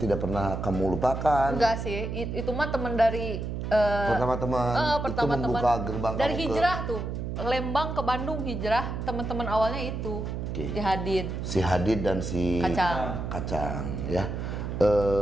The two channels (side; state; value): right; noise; hum, 4 dB below the sound